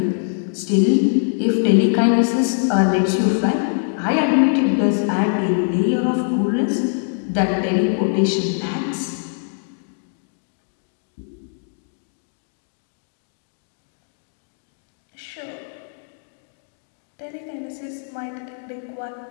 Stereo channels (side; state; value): right; silent; digital silence